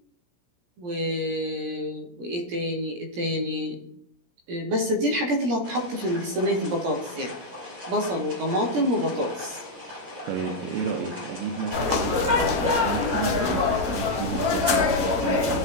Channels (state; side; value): late; left; 17 ms